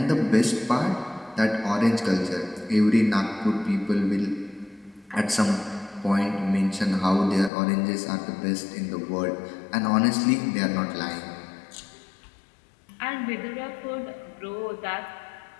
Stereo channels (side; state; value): right; drops out; at 7.5 s